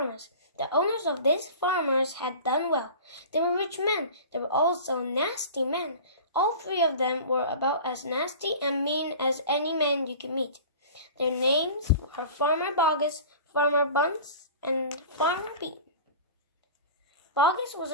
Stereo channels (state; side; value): inverted; both; correlation -0.38